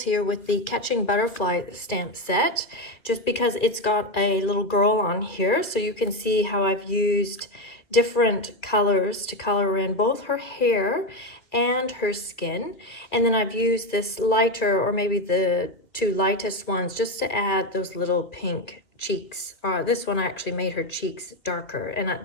here with the Catching Butterfly stamp set, just because it's got a little girl on here, so you can see how I've used different colors to color in both her hair and her skin. And then I've used this lighter, or maybe the two lightest ones just to add those little pink cheeks. This one I actually made her cheeks darker, and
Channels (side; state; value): right; late; 2.7 ms